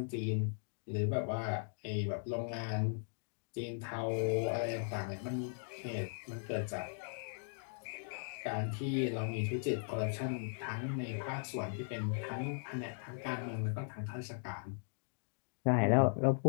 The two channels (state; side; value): silent; right; digital silence